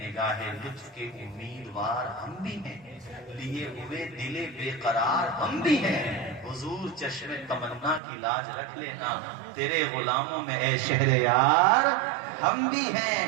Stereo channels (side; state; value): left; drops out; at 8.0 s